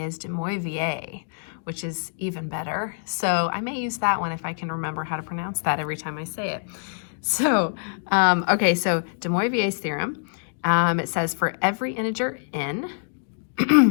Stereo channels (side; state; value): right; silent; digital silence